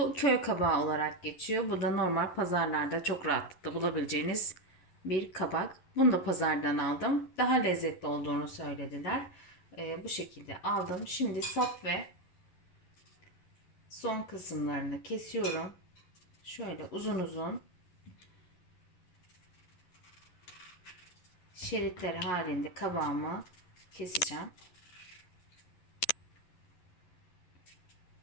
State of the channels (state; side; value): late; right; 11 ms